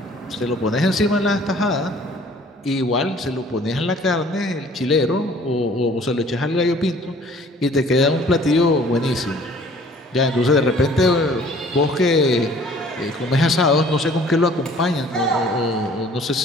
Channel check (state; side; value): normal; both; correlation 0.53